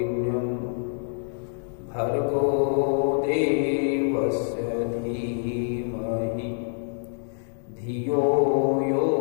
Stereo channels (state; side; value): silent; right; digital silence